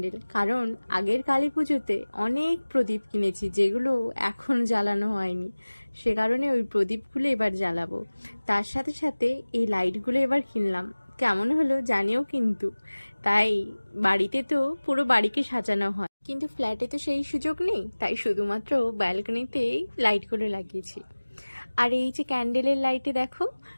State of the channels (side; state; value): both; inverted; correlation -1.00